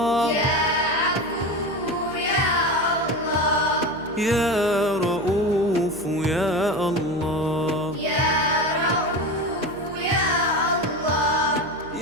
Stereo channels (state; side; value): noise; right; hum, 21 dB below the sound